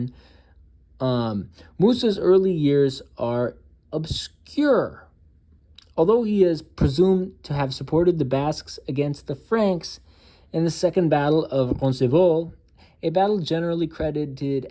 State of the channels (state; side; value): identical; both; correlation 1.00